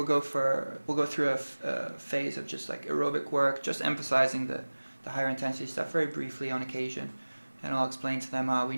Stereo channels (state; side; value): inverted; both; correlation -1.00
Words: go through a phase of just like aerobic work, just emphasizing the higher intensity stuff very briefly on occasion, and I'll explain to them, we